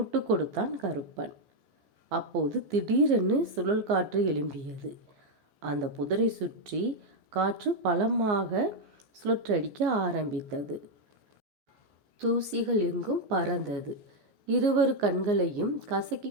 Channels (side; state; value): left; late; 14 ms